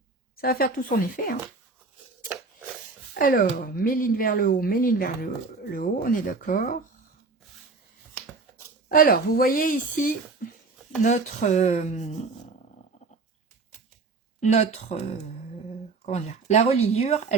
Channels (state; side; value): quieter; left; 4.0 dB